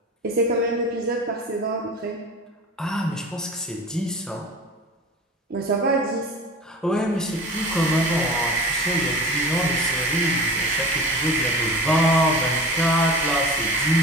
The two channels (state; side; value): normal; both; correlation 0.37